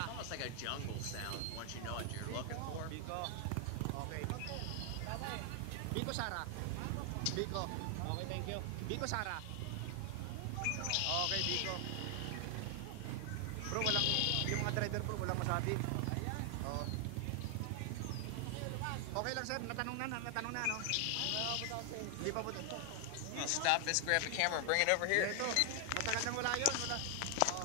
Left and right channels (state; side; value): different; both; correlation 0.00